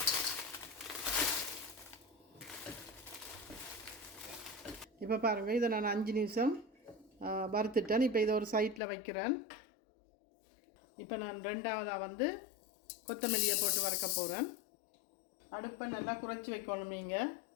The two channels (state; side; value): drops out; right; at 8.8 s